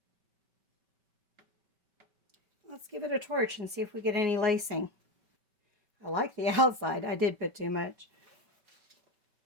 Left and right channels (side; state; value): left; late; 5.2 ms